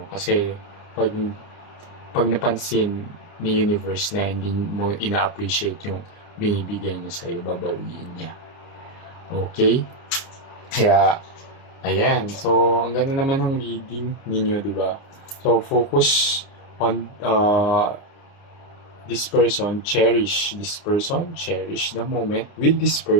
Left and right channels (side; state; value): right; late; 29 ms